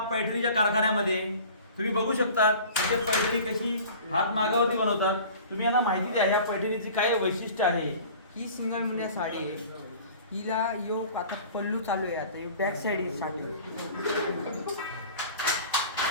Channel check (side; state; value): both; inverted; correlation -0.43